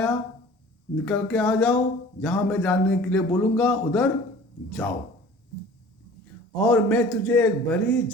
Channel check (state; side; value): normal; both; correlation 0.46